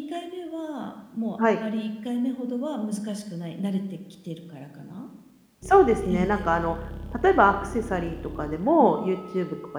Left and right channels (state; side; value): identical; both; correlation 1.00